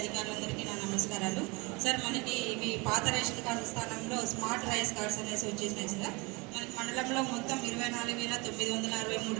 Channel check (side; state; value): left; quieter; 26.7 dB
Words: నా నమస్కారాలు. సార్, మనకి ఇవి పాత రేషన్ కార్డు స్థానంలో స్మార్ట్ రైస్ కార్డ్స్ అనేసి వచ్చేసినాయి సార్. మనకి మండలంలో మొత్తం 24,963